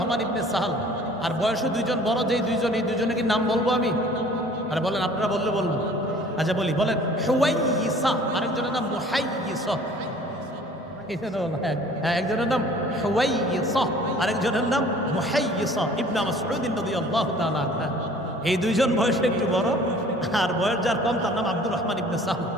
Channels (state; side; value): normal; both; correlation 0.50